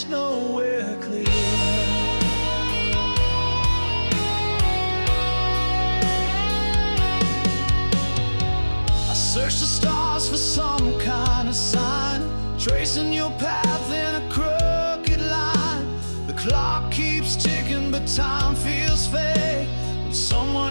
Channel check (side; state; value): both; inverted; correlation -1.00